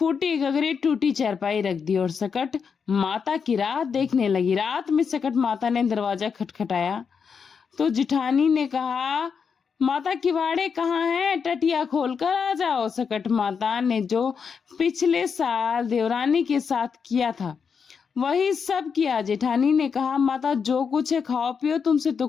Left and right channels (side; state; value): right; quieter; 6.2 dB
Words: गगरी टूटी चारपाई रख दी और सकट माता की रात देखने लगी। रात में सकट माता ने दरवाजा खटखटाया तो जिठानी ने कहा, माता किवाड़े कहाँ हैं, टटिया खोलकर आ जाओ। सकट माता ने जो पिछले साल देवरानी के साथ किया था वही सब किया। जेठानी ने कहा, माता जो कुछ है खाओ पियो, तुमसे तो